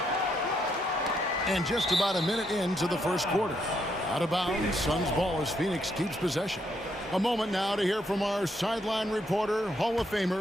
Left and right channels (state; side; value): normal; both; correlation 0.75